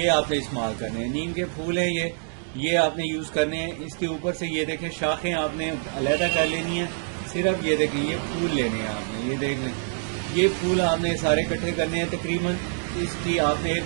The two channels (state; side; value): silent; left; digital silence